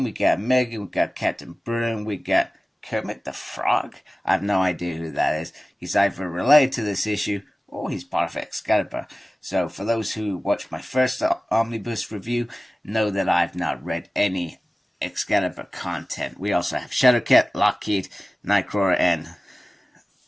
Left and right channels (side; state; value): both; normal; correlation 0.97